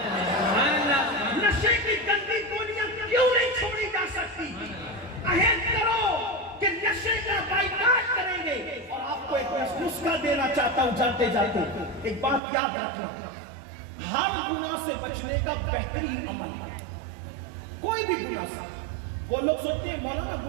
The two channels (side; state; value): left; drops out; at 12.4 s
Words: نشے کی گندی گولیاں کیوں نہیں چھوڑی جا سکتی؟ عہد کرو کہ نشے کا بائیکاٹ کریں گے. اور آپ کو ایک نسخہ دینا چاہتا ہوں جاتے جاتے، ایک بات یاد رکھنا، ہر گناہ سے بچنے کا بہترین عمل، کوئی بھی گناہ سے. وہ لوگ سوچتے ہیں مولانا